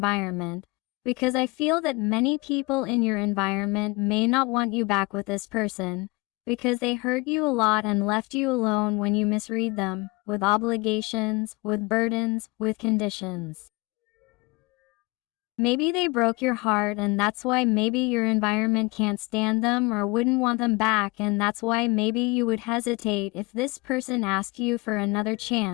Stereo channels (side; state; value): right; quieter; 25.6 dB